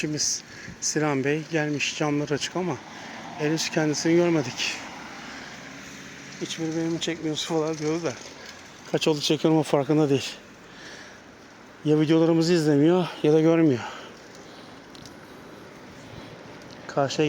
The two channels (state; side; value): identical; both; correlation 1.00